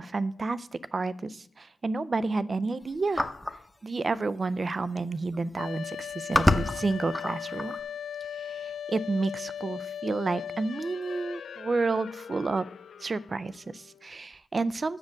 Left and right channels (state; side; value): normal; both; correlation 0.92